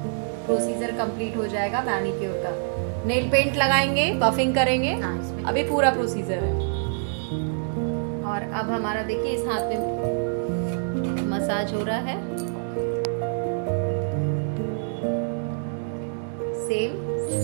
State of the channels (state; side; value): silent; left; digital silence